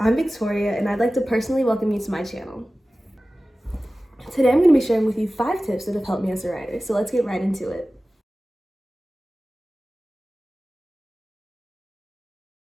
I'm Victoria and I'd like to personally welcome you to my channel. Today I'm going to be sharing with you 5 tips that have helped me as a writer, so let's get right into it.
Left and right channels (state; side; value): normal; both; correlation 0.96